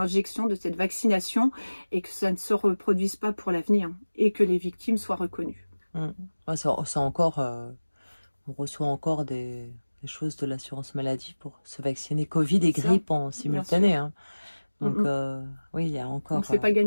de cette vaccination, et que ça ne se reproduise pas pour l'avenir, et que les victimes soient reconnues. Ouais, c'est encore, on reçoit encore des choses de l'assurance maladie pour se vacciner Covid et grippe en simultané. Hein. Donc, oui, il y a encore... Donc, c'est pas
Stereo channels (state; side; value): inverted; both; correlation -1.00